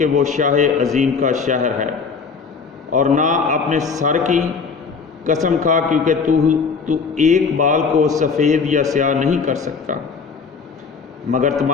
وہ شاہ عظیم کا شہر ہے، اور نہ اپنے سر کی قسم کھا کیونکہ تو ایک بال کو سفید یا سیاہ نہیں کر سکتا، مگر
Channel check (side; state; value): right; quieter; 5.3 dB